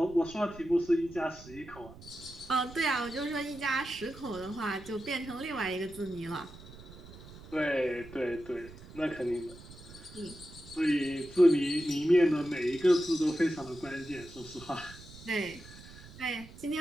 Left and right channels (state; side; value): noise; right; rumble, 18 dB below the sound